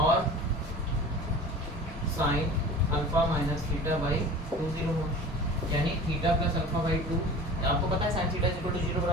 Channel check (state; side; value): normal; both; correlation 0.39